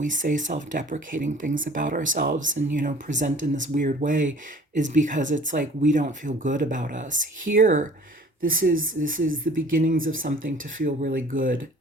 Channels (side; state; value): both; normal; correlation 0.49